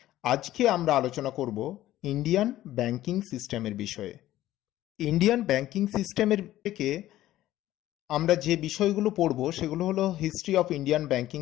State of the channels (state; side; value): quieter; right; 14.4 dB